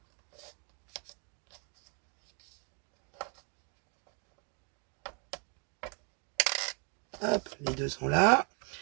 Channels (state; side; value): quieter; left; 38.7 dB